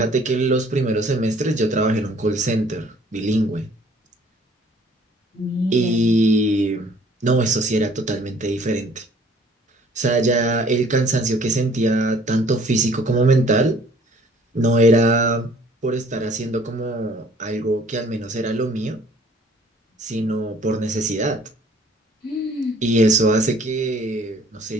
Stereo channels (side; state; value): both; normal; correlation 0.56